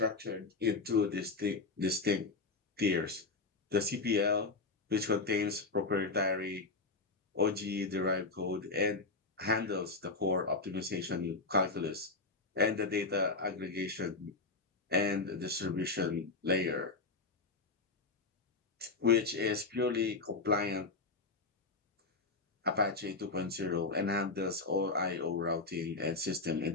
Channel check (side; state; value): right; quieter; 3.7 dB